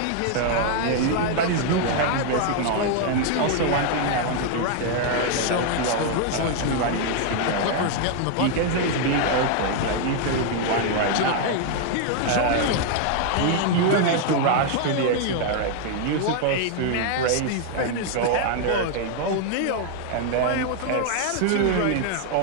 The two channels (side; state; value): both; different; correlation 0.00